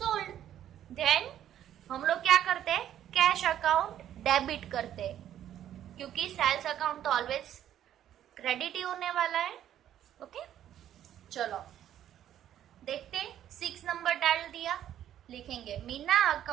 then हम लोग क्या करते हैं, कैश अकाउंट डेबिट करते हैं, क्योंकि सेल्स अकाउंट तो ऑलवेज क्रेडिट ही होने वाला है। ओके, चलो देखते, 6 नंबर डाल दिया, लिखेंगे Meena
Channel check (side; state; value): left; quieter; 11.1 dB